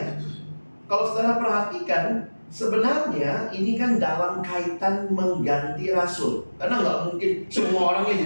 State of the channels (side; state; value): both; inverted; correlation -1.00